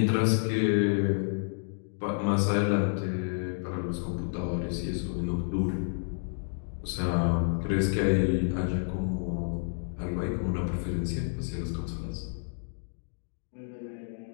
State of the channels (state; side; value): silent; right; digital silence